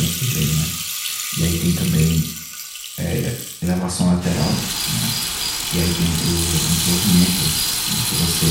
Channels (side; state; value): both; identical; correlation 1.00